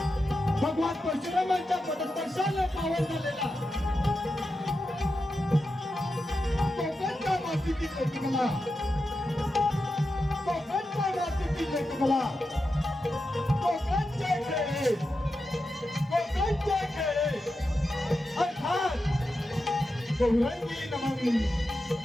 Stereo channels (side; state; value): both; normal; correlation 0.89